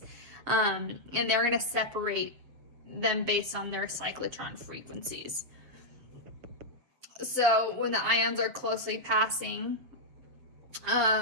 And they're going to separate them based on their cyclotron frequencies. So when the ions are closely passing,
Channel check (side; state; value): left; late; 7.4 ms